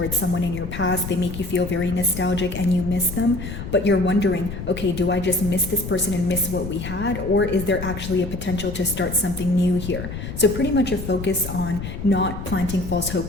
someone in your past. They make you feel very nostalgic and you miss them, but you're wondering, okay, do I just miss this person and miss what we had, or is there actually a potential to start something new here? So pretty much a focus on not planting false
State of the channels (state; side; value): noise; left; rumble, 8 dB below the sound